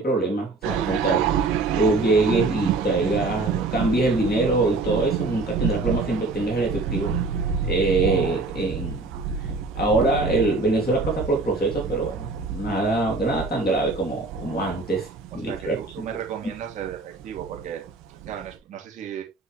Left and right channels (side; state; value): left; quieter; 3.5 dB